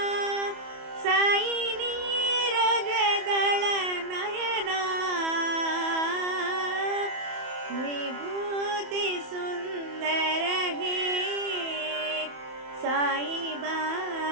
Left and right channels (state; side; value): late; left; 28 ms